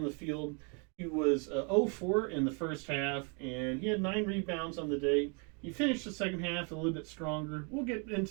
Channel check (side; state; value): left; quieter; 35.7 dB